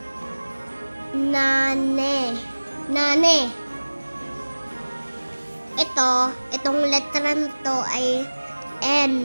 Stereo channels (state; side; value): inverted; both; correlation -1.00